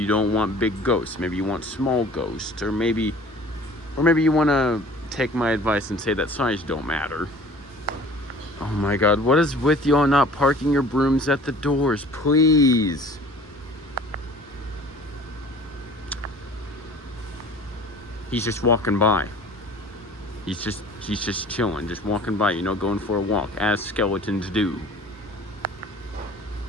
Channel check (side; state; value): both; normal; correlation 0.47